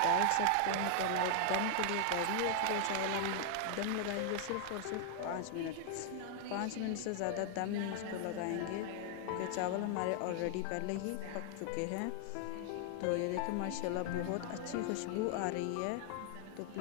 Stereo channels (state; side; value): different; both; correlation 0.00